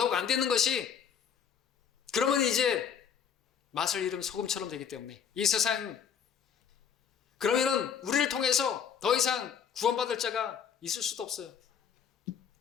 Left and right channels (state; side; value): quieter; right; 7.8 dB